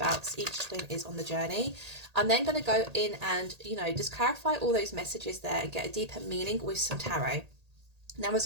each twin is on the journey. I'm then going to go in and just clarify all those messages there and get a deeper meaning with some tarot. Now,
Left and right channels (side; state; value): left; late; 1.8 ms